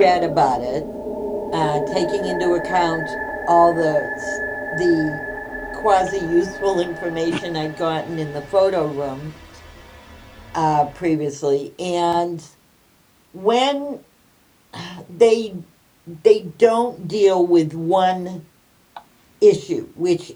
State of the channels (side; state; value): both; identical; correlation 1.00